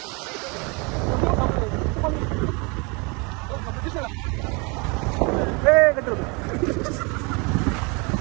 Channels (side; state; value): left; quieter; 30.1 dB